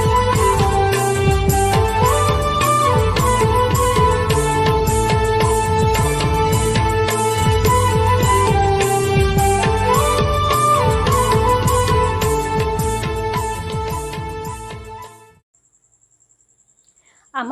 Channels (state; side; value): identical; both; correlation 1.00